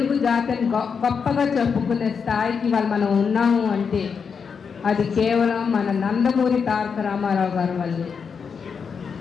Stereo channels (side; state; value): right; quieter; 6.1 dB